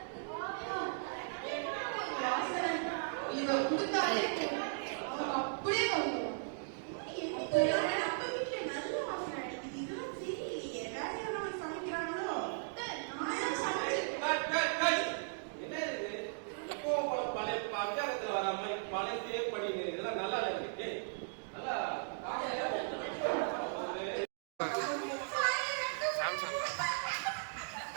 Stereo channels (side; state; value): left; silent; digital silence